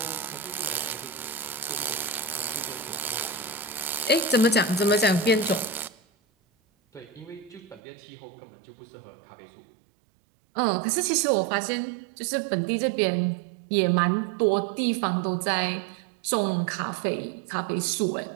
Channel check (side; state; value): left; drops out; at 7.8 s